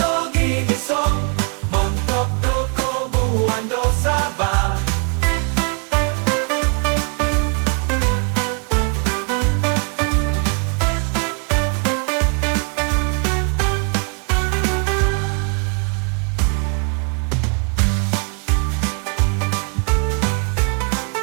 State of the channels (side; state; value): left; quieter; 37.8 dB